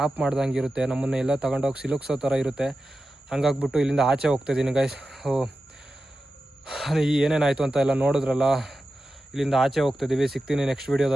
ಮಾಡ್ದಂಗೆ ಇರುತ್ತೆ. ನಮ್ಮನ್ನು ಎಲ್ಲ ತಗೊಂಡೋಗಿ ಸಿಲುಕ್ಸೋ ಥರ ಇರುತ್ತೆ. ಹಂಗಾಗ್ಬಿಟ್ಟು ಇಲ್ಲಿಂದ ಆಚೆ ಹೋಗ್ತಾಯಿದ್ದೀನಿ ಗೈಸ್. ಏನೇನಾಯಿತು ಅಂತ ಎಲ್ಲ ನೋಡಿದ್ರಲ್ಲ. ಇಲ್ಲಿಂದ ಆಚೆ ಹೋಗ್ತಾಯಿದ್ದೀವಿ. ಸಿಗ್ತೀನಿ ನೆಕ್ಸ್ಟ್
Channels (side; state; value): both; normal; correlation 0.92